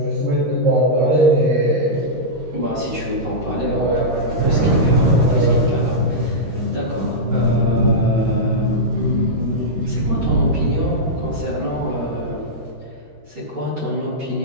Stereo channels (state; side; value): late; left; 13 ms